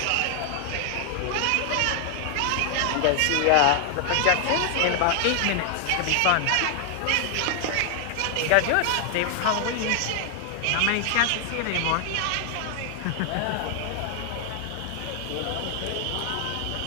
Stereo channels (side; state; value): both; different; correlation 0.00